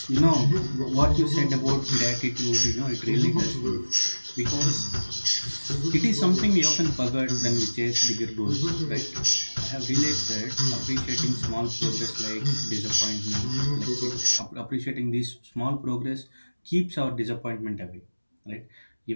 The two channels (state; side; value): inverted; both; correlation -1.00